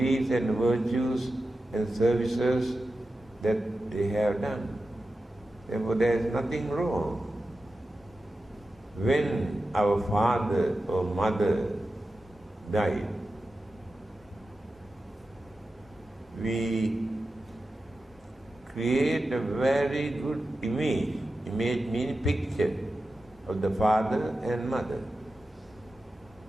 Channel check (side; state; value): both; normal; correlation 0.92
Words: and virtues and services that they have done. Therefore, there is nothing wrong. When our father or mother died, we create a very good image. Image means picture of the father and mother.